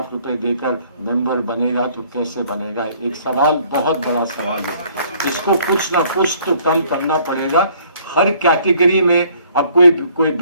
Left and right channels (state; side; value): inverted; both; correlation -0.60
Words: دے کر ممبر بنے گا تو کیسے بنے گا؟ ایک سوال، بہت بڑا سوال ہے، اس کو کچھ نہ کچھ تو کم کرنا پڑے گا۔ ہر کیٹیگری میں اب کوئی